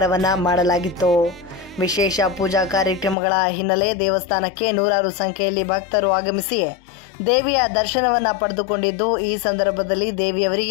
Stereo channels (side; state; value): right; drops out; at 3.2 s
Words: ಮಾಡಲಾಗಿತ್ತು. ವಿಶೇಷ ಪೂಜಾ ಕಾರ್ಯಕ್ರಮಗಳ ಹಿನ್ನೆಲೆ ದೇವಸ್ಥಾನಕ್ಕೆ ನೂರಾರು ಸಂಖ್ಯೆಯಲ್ಲಿ ಭಕ್ತರು ಆಗಮಿಸಿ ದೇವಿಯ ದರ್ಶನವನ್ನ ಪಡೆದುಕೊಂಡಿದ್ದು, ಈ ಸಂದರ್ಭದಲ್ಲಿ